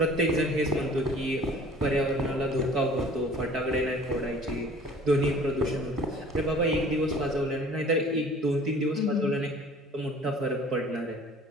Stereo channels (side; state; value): both; normal; correlation 0.49